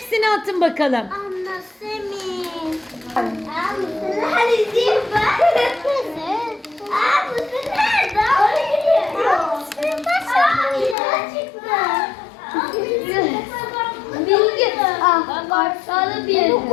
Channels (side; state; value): right; drops out; at 11.0 s